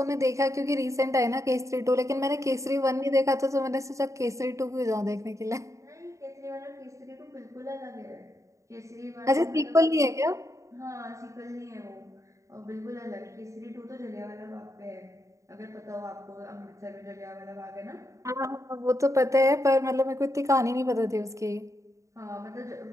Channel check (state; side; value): late; left; 0.15 ms